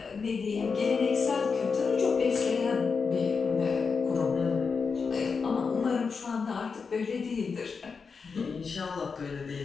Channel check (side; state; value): right; quieter; 5.3 dB